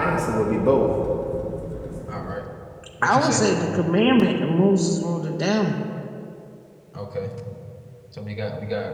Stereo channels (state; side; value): identical; both; correlation 1.00